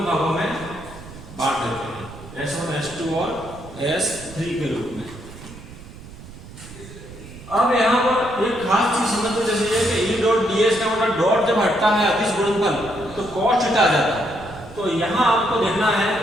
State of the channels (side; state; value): right; noise; rumble, 16 dB below the sound